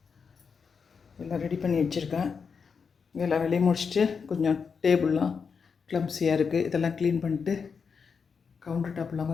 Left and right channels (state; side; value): quieter; right; 5.8 dB